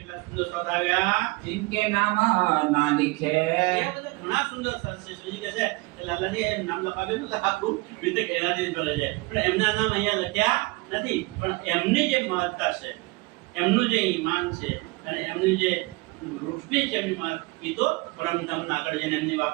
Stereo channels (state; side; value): quieter; left; 24.8 dB